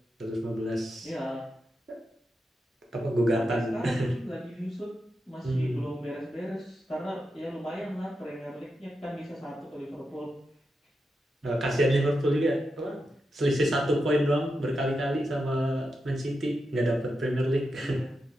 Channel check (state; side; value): normal; both; correlation 0.87